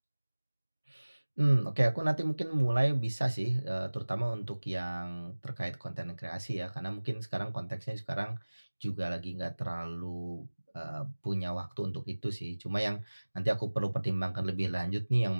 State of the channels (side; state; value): both; inverted; correlation -1.00